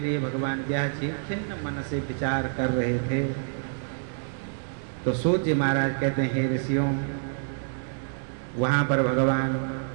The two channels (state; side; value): silent; left; 60 dB below the other